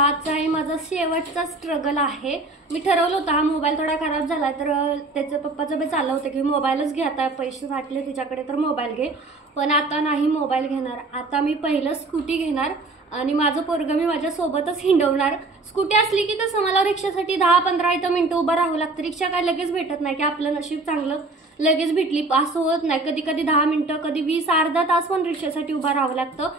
आहे माझा शेवटचा स्ट्रगल आहे. मी ठरवलं होतं हा मोबाईल थोडा खराब झाला तर त्याचं पप्पाचं बी चाललं होतं की मोबाईलच घे, आता पैसे साठले तुझ्याकडे तर मोबाईल घे. पण आता नाही मोबाईल घेणार, आता मी पहिलं स्कूटी घेणार आणि माझं पोरगं मी माझ्या सोबतच हिंडवणार. स्कूटी असली की कसं मला रिक्षासाठी 10-15 इथं मिनिटं उभं राहावं लागतं. रिक्षा काय लगेच भेटत नाही की आपलं नशीब चांगलं लगेच भेटली असं होत नाही. कधी कधी 10 मिनिटं, कधी 20 अर्धा तास पण रिक्षासाठी उभं राहावं लागतं.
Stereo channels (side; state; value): left; quieter; 3.2 dB